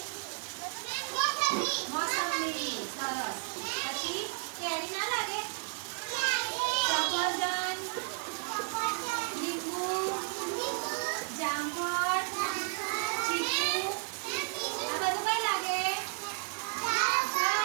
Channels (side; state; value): left; silent; 56 dB below the other